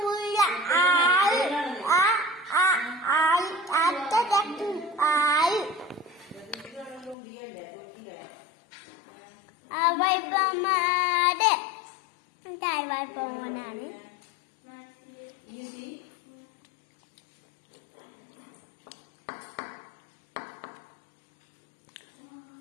വൈപ്പമാട് തായ് വൈപ്പമോനാണ്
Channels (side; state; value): right; drops out; at 7.2 s